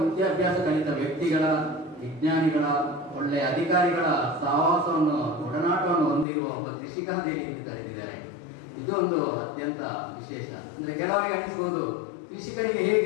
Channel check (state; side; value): drops out; right; at 6.2 s